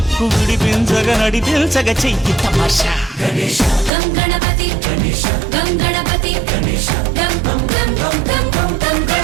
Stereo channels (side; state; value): left; drops out; at 3.9 s